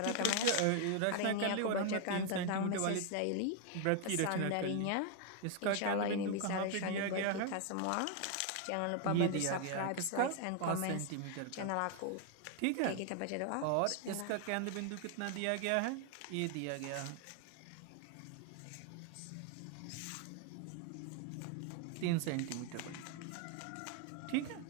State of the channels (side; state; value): both; different; correlation 0.00